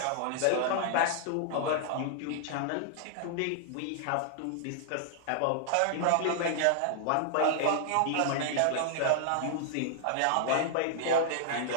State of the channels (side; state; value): both; different; correlation -0.01